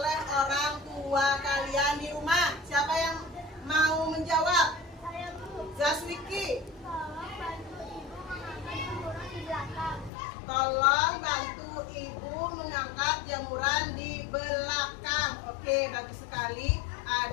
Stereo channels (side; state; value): right; drops out; at 10.1 s